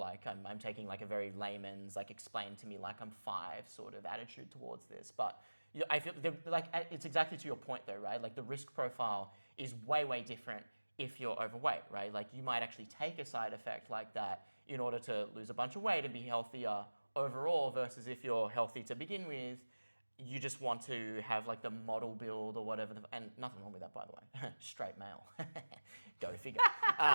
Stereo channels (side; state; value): both; inverted; correlation -1.00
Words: I'm taking like a very layman's like explain to me like I'm 5 sort of attitude towards this. But I feel like it's exactly to your point though, right? Like the risk profile is way different if you're overweight, right? Like you might actually take a side effect like that in order to lose a bunch of weight and be healthier overall, versus if you're healthy to begin with. You just want to have like the model build or whatever, and nothing wrong with that, by the way. Straight male, go figure.